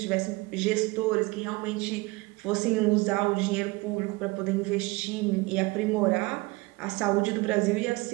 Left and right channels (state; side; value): quieter; left; 23.2 dB